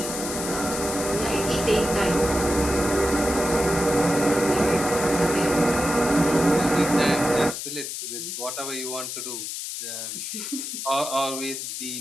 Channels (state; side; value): noise; left; hiss, 6 dB below the sound